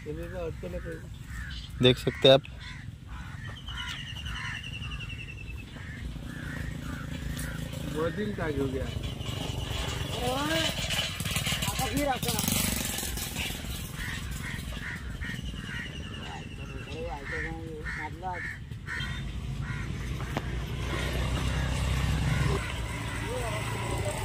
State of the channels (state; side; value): identical; both; correlation 1.00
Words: अटकेला पाहिजे. देख सकते हैं आप. मधील का घेऊ घ्या.